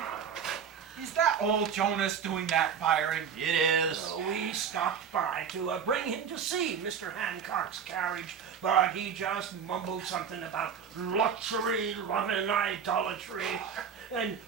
Is that old Jonas doing that firing? It is. We stopped by to bring him to see Mr. Hancock's carriage, but he just mumbled something about luxury, love and idolatry, and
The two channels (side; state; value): left; quieter; 7.2 dB